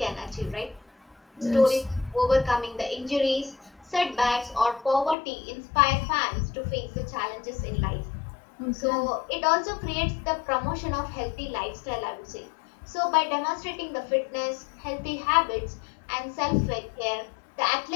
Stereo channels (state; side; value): drops out; right; at 5.2 s